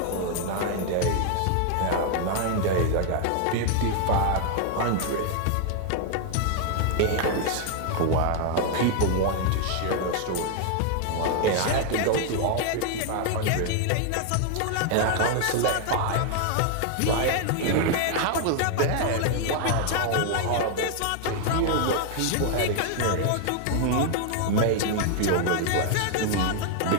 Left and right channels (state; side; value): different; both; correlation 0.00